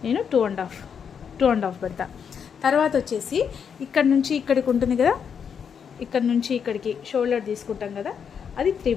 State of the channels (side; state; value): right; quieter; 7.1 dB